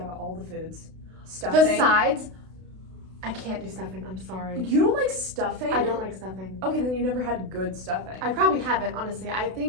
all the foods. Stuffing. The sides, I can't do stuffing. I'm sorry. You don't like stuffing? I don't like stuffing. Okay, then you never had good stuffing. I probably haven't, honestly. I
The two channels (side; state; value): left; late; 32 ms